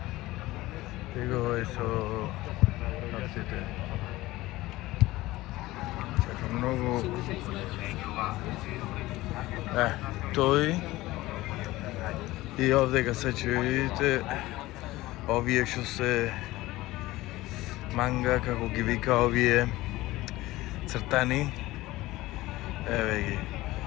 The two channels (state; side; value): quieter; right; 18.2 dB